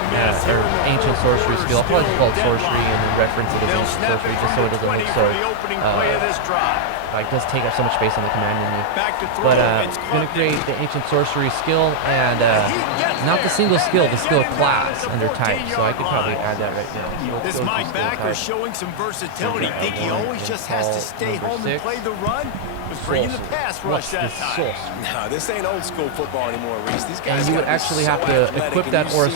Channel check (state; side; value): different; both; correlation -0.01